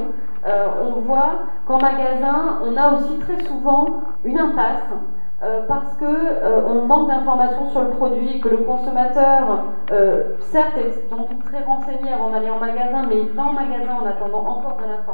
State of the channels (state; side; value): inverted; both; correlation -1.00